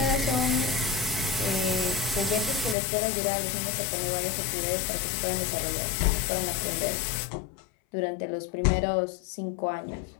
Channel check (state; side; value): drops out; right; at 2.8 s